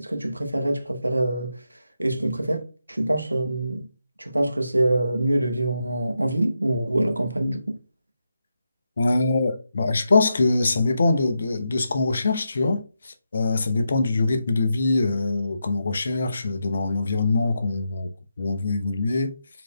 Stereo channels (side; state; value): both; inverted; correlation -0.85